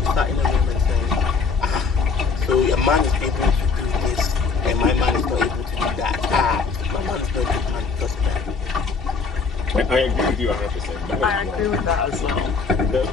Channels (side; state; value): right; quieter; 4.9 dB